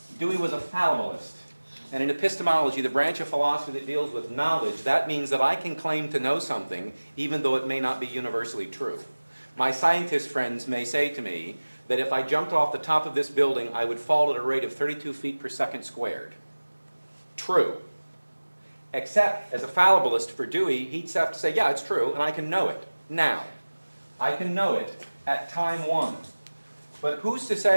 Dewey was a fallibilist. And in epistemology, the branch of philosophy that deals with knowledge, that means that I can claim to know something even though it may not be universally true. My scientist friends may say to me that if I jumped off the top of this building, I would fall at a rate of 32 feet per second squared. True. Except, as a fallibilist for Dewey, he'd have to say, yeah, it's true, and I can know it now. I can know it at time one. But who's to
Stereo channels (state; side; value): inverted; both; correlation -1.00